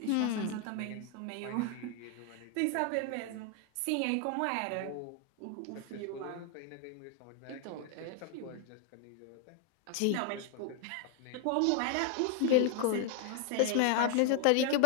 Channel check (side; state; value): both; different; correlation 0.00